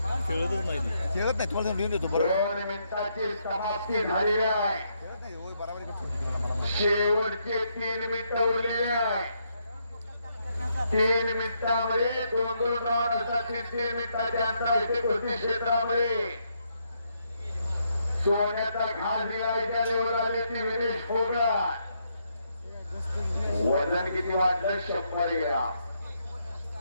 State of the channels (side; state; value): both; inverted; correlation -0.76